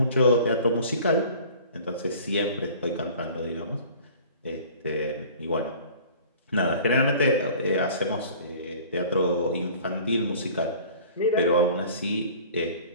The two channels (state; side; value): inverted; both; correlation -0.47